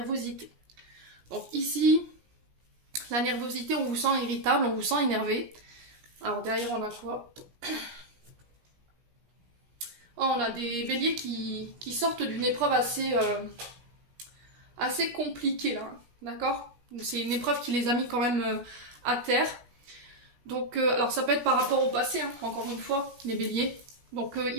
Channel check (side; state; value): left; late; 16 ms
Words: Donc ici, la nervosité, on vous sent irritable, on vous sent énervé. Alors derrière, on a quoi? Oh, on a des béliers qui sortent d'une épreuve assez compliquée là, d'accord? C'est une épreuve qui les a mis quand même à terre. Donc, alors ça peut être par rapport au passé, hein, encore une fois, les béliers. Donc